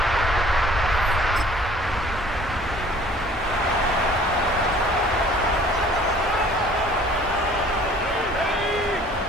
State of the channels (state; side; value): normal; both; correlation 0.52